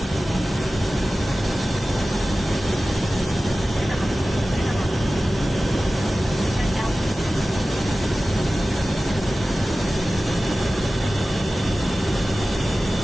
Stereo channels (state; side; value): normal; both; correlation 0.96